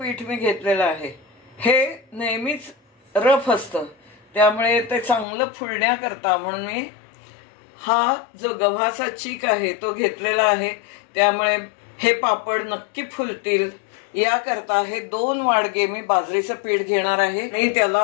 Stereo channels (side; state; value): right; drops out; at 5.2 s